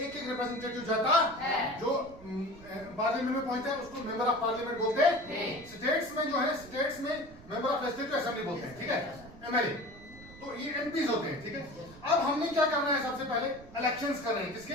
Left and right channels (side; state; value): right; noise; rumble, 19 dB below the sound